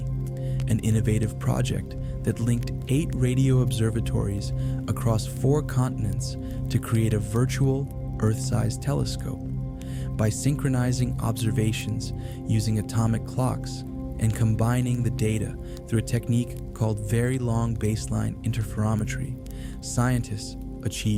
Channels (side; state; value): both; identical; correlation 1.00